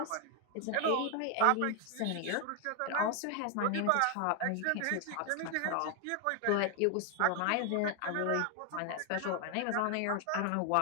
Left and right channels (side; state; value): both; different; correlation 0.00